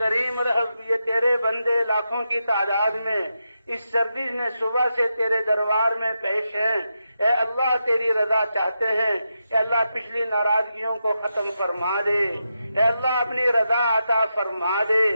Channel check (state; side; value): inverted; both; correlation -0.87